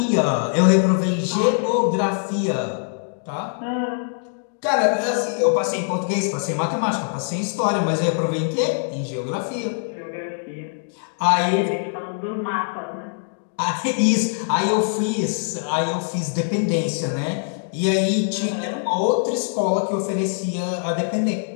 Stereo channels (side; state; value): right; silent; digital silence